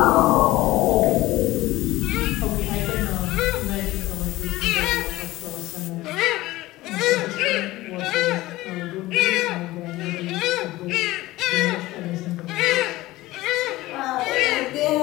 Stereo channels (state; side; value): quieter; right; 17.9 dB